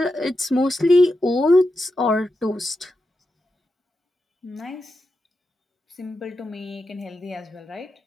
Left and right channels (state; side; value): normal; both; correlation 0.88